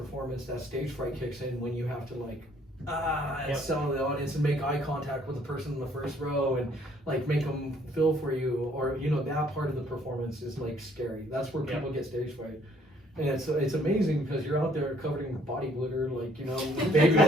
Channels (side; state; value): both; normal; correlation 0.63